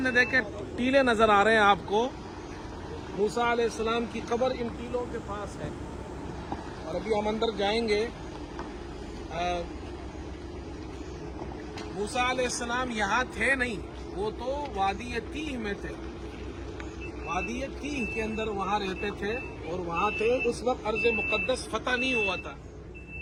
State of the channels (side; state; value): both; identical; correlation 1.00